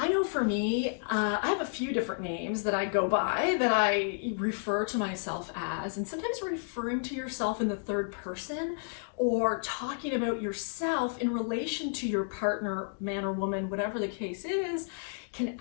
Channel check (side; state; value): right; silent; digital silence